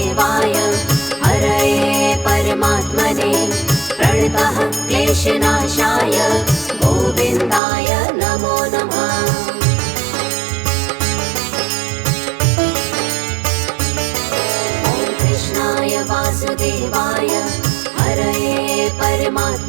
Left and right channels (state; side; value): drops out; left; at 7.6 s